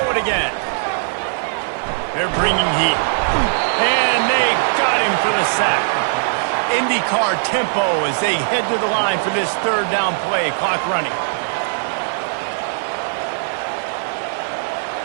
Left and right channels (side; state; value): left; silent; digital silence